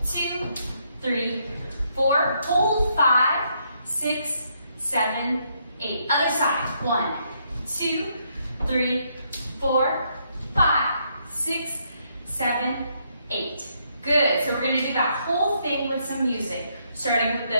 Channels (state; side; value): inverted; both; correlation -0.74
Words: 2, 3, 4. Hold 5, 6, 7, 8. Other side. 1, 2, 3, 4, 5, 6, 7, 8. Good. So we're going to do that whole thing with some music, starting with